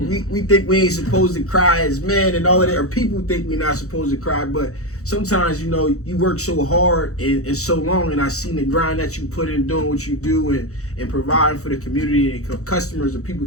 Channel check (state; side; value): late; right; 0.65 ms